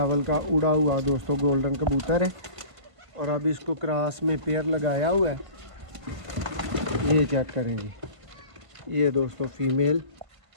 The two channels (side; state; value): left; late; 1.5 ms